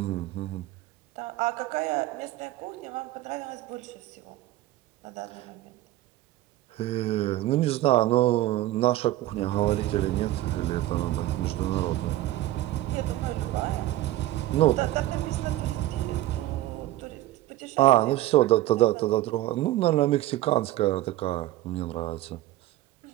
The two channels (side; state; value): left; quieter; 15.4 dB